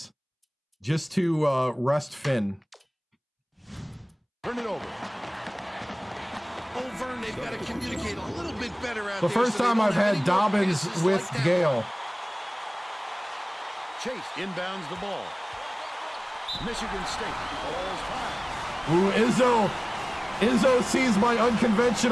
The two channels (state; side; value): identical; both; correlation 1.00